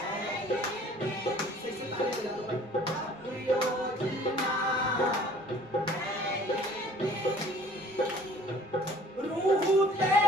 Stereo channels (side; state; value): right; noise; rumble, 30 dB below the sound